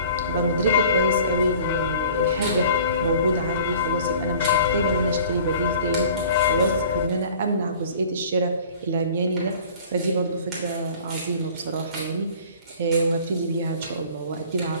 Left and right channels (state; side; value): inverted; both; correlation -0.47